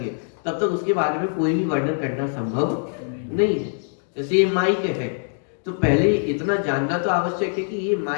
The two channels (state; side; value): silent; right; digital silence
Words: तब तक उसके बारे में कोई भी वर्णन करना संभव नहीं है। जैसे ये माइक है, तो पहले इतना जानना तो आवश्यक है कि ये